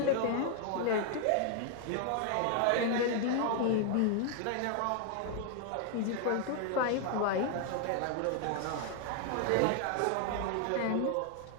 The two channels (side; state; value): both; different; correlation 0.00